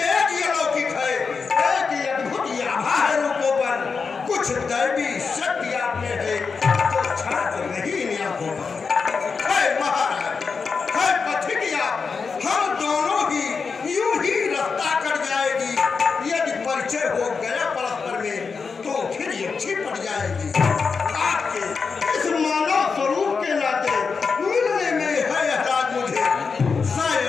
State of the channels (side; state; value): right; quieter; 5.1 dB